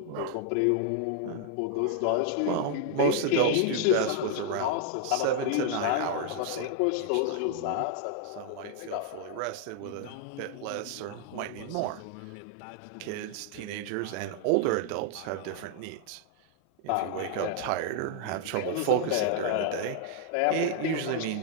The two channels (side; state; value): both; different; correlation 0.00